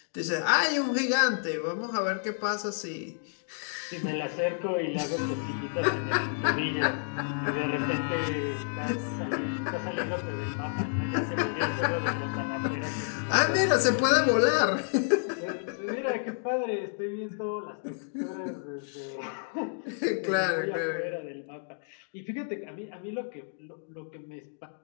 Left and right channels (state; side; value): silent; right; digital silence